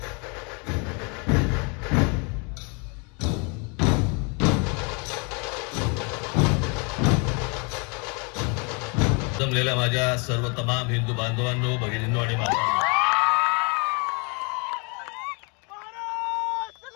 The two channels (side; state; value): right; quieter; 33.4 dB